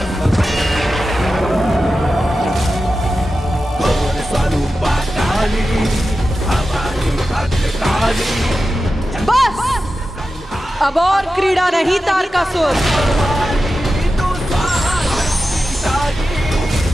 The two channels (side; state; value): both; normal; correlation 0.92